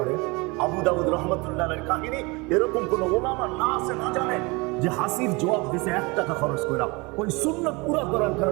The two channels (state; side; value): quieter; left; 26.4 dB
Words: আবু দাউদ রহমতুল্লাহ আলাইহির কাহিনী, এরকম কোন ওলামা না আছে না জানে যে হাসির জবাব দিছে 1 টাকা খরচ করে, ওই সুন্নাত পুরা করার